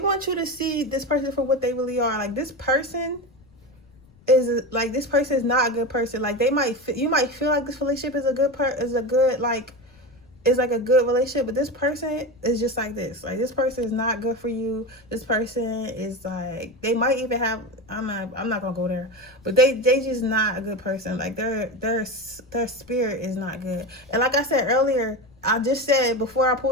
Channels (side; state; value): left; noise; rumble, 28 dB below the sound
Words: you to see this person for what they really are. Like, this person is not a good person. Like, you might feel like this relationship is a good relationship, but this person is just like this. Like, this person is not good for you. This person is like, they might even have, I'm not gonna go there, but they just not a good person. Like, their spirit is not good. And like I said earlier, I just said before I